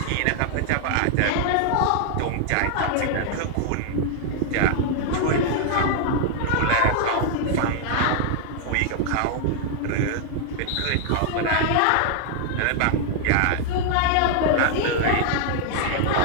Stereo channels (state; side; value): different; both; correlation 0.00